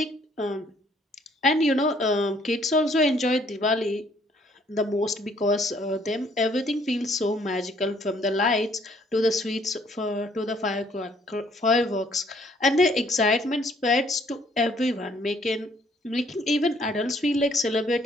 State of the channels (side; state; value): both; normal; correlation 0.63